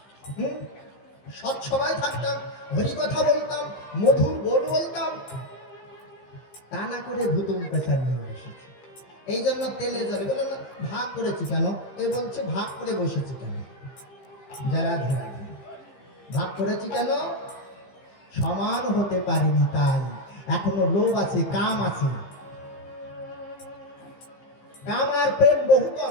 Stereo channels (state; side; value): late; right; 15 ms